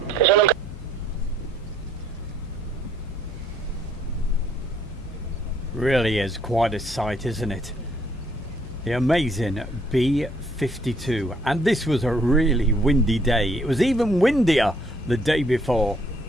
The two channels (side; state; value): both; normal; correlation 0.65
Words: Really is quite a sight, isn't it? The amazing B-52. And this was a really windy day. It was even windier the day before.